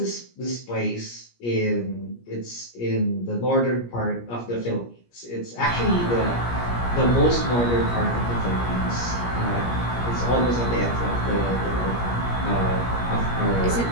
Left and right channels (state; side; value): late; right; 17 ms